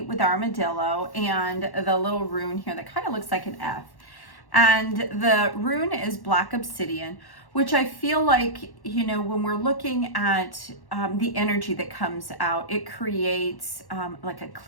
with armadillo and the little rune here that kind of looks like an F. And the rune is black obsidian, which I feel like, you know, when we're looking at the energy that comes out, it creates like a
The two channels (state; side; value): late; right; 1.1 ms